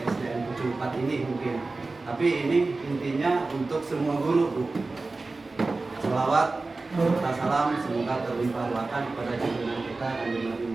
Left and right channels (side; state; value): left; quieter; 3.5 dB